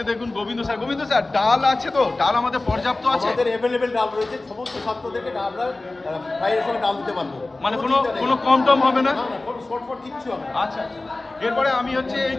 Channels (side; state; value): right; quieter; 3.0 dB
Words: দেখুন গোবিন্দ স্যার ডাল আছে তো? ডাল আমাদের পর্যাপ্ত আছে? আমাদের অ্যাভেলেবেল ডাল রয়েছে, সমস্ত ছাত্রদেরকে আমরা ফ্রাইয়ের সঙ্গে ডাল দিতে পারবো। মানে কোনো কম টম হবে না? না না, কোনো শর্টফট কিচ্ছু হবে না। আচ্ছা, এরপরে আমি হচ্ছে এই